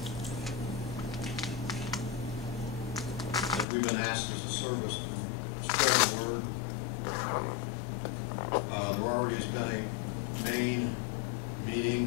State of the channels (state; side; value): drops out; right; at 3.7 s